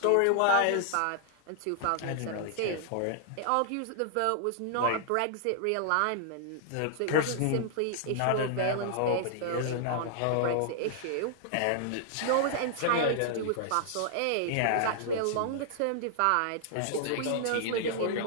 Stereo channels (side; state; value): both; different; correlation -0.01